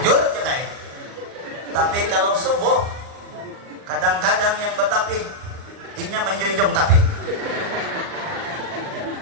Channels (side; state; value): left; late; 39 ms